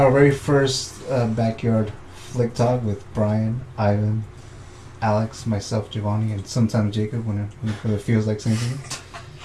very first backyard flick talk with Bryan, Ivan, Alex, myself, Giovany, and sometimes Jacob when it feels like saying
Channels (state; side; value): identical; both; correlation 1.00